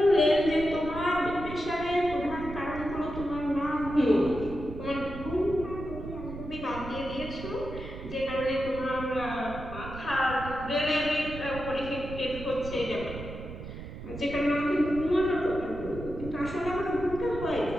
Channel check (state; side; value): noise; right; rumble, 10 dB below the sound